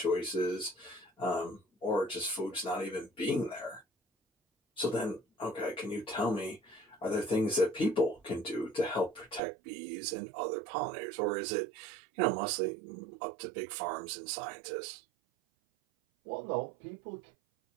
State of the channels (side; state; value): left; drops out; at 9.4 s